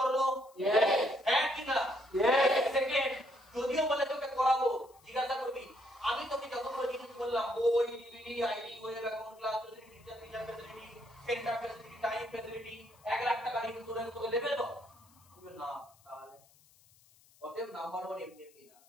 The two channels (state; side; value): noise; left; hiss, 29 dB below the sound